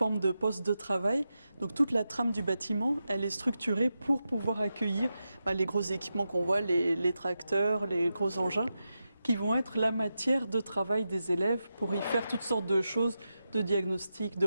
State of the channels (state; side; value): inverted; both; correlation -0.89